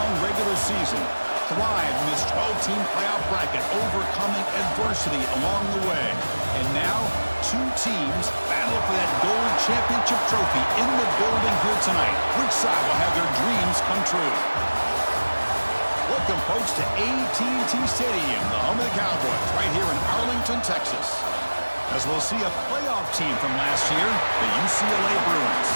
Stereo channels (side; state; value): both; inverted; correlation -1.00